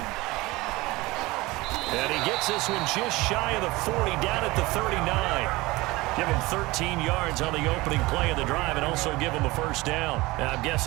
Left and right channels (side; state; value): left; quieter; 21.2 dB